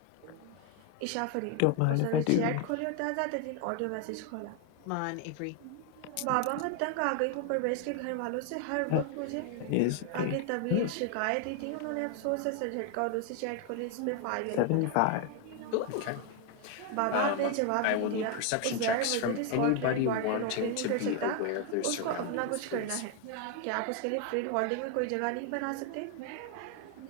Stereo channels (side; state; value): both; different; correlation 0.01